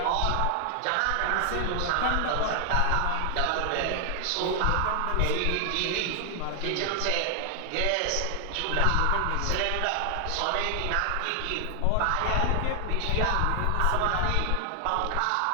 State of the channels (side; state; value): both; different; correlation 0.00